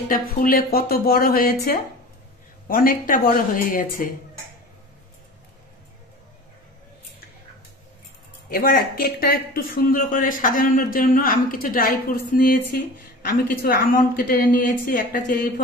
ফুলে কত বড় হয়েছে, অনেকটা বড় হয়ে গেছে। এবার কেকটা একটু সুন্দর করে সাজানোর জন্য আমি কিছু ড্রাই ফ্রুটস নিয়েছি। আমি কিছু আমন্ড কেটে নিয়েছি, একটা চেরি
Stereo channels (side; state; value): both; normal; correlation 0.37